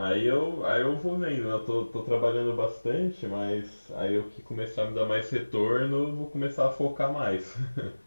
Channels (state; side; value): inverted; both; correlation -1.00